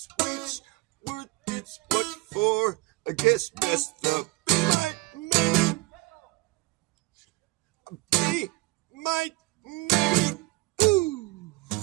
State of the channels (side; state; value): left; quieter; 23.2 dB